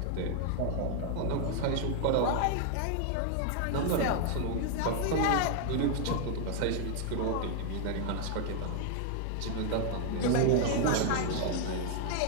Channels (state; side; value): different; both; correlation 0.00